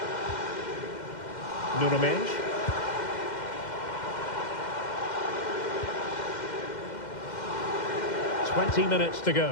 Nuno Mendes. "20 minutes to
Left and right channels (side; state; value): right; late; 2.1 ms